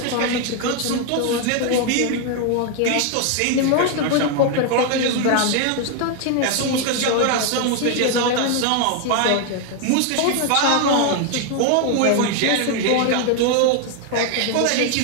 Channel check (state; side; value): different; both; correlation 0.01